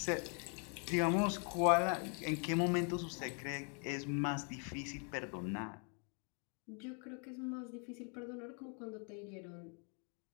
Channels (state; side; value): quieter; right; 39.4 dB